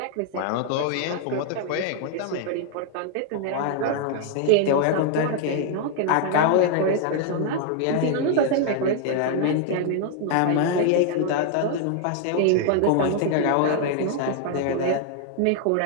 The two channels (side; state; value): both; different; correlation 0.00